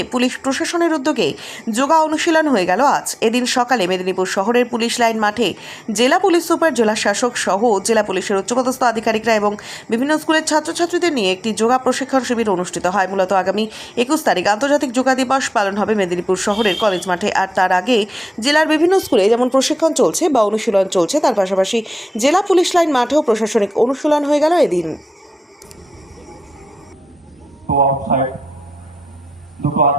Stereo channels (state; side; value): normal; both; correlation 0.94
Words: পুলিশ প্রশাসনের উদ্যোগে যোগা অনুশীলন হয়ে গেল আজ। এদিন সকালে মেদিনীপুর শহরের পুলিশ লাইন মাঠে জেলা পুলিশ সুপার, জেলা শাসক সহ জেলা পুলিশের উচ্চপদস্থ আধিকারিকরা এবং বিভিন্ন স্কুলের ছাত্রছাত্রীদের নিয়ে একটি যোগা প্রশিক্ষণ শিবির অনুষ্ঠিত হয়। মূলত আগামী 21 তারিখ আন্তর্জাতিক যোগা দিবস পালন হবে মেদিনীপুর শহরের কলেজ মাঠে। আর তার আগে জেলার বিভিন্ন স্কুলে যেমন প্রশিক্ষণ চলছে বা অনুশীলন চলছে, তার পাশাপাশি জেলা পুলিশ লাইন মাঠেও প্রশাসনিক অনুশীলন হয়ে গেল এদিন। তো আউটসাইড দুটো